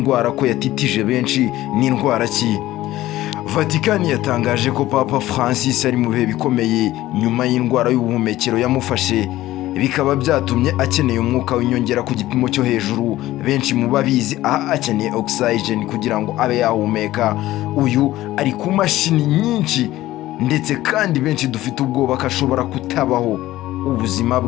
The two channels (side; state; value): right; quieter; 15.7 dB